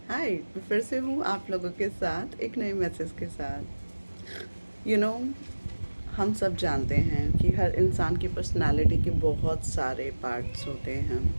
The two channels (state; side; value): inverted; both; correlation -1.00